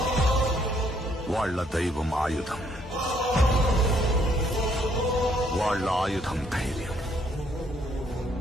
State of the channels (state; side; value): normal; both; correlation 0.68